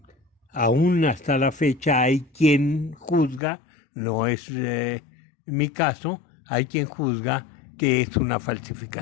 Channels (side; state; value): right; drops out; at 3.4 s